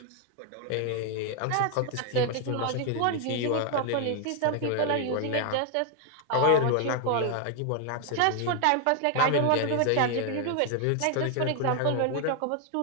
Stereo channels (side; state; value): both; different; correlation 0.00